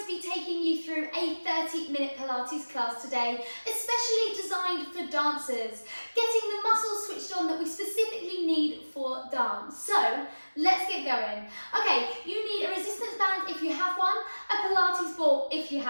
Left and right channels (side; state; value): both; inverted; correlation -1.00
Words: taking you through a 30-minute Pilates class today, especially designed for dancers, getting the muscles switched on that we specifically need for dance. So let's get going. Okay, you need a resistance band if you have one, a Pilates ball if you